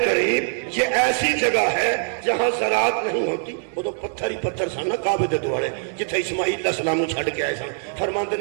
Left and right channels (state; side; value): silent; left; 64 dB below the other